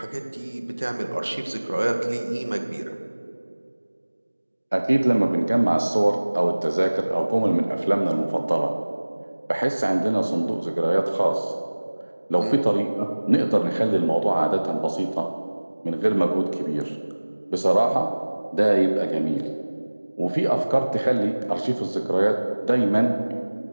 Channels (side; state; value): both; inverted; correlation -1.00